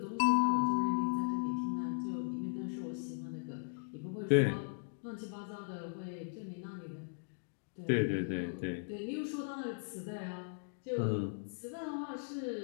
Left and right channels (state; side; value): silent; right; digital silence